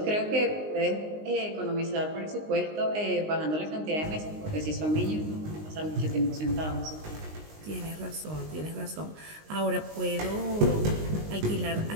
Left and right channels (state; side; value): late; left; 19 ms